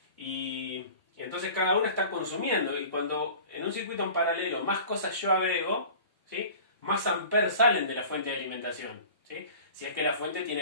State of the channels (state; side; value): inverted; both; correlation -0.42